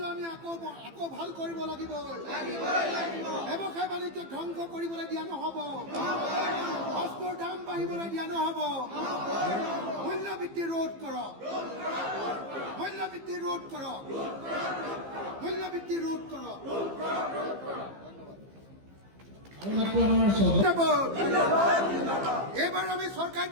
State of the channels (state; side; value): late; left; 15 ms